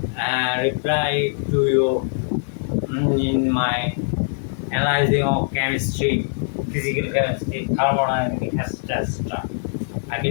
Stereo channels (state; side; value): silent; right; digital silence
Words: reply to you in my analyzing of chemistry, physical chemistry, thermodynamics, etc. I